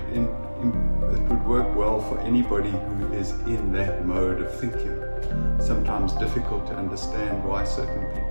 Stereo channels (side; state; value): both; inverted; correlation -1.00